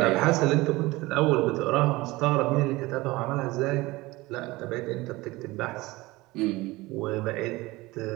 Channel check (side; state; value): left; quieter; 20.7 dB